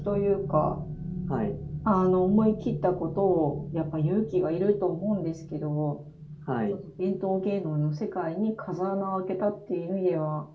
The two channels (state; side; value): identical; both; correlation 1.00